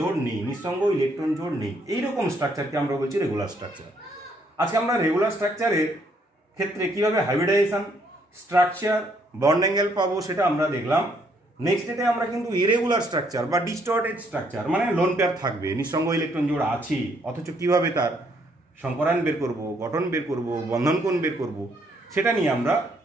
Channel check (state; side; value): normal; both; correlation 0.69